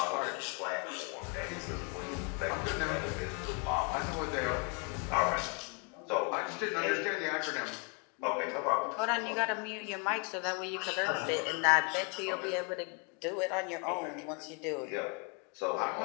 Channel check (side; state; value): right; quieter; 35.9 dB